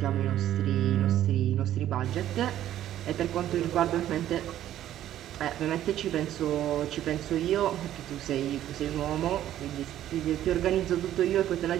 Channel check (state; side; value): quieter; left; 12.2 dB